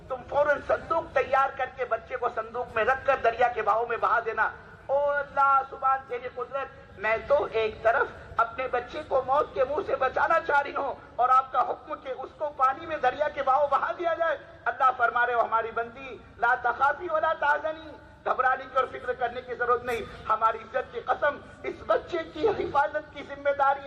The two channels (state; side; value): identical; both; correlation 1.00